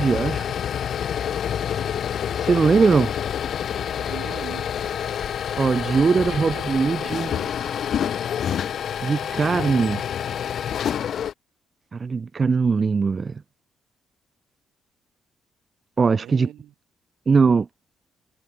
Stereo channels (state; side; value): normal; both; correlation 0.82